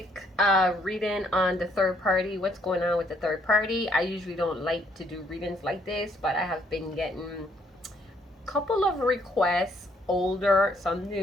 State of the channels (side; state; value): both; normal; correlation 0.68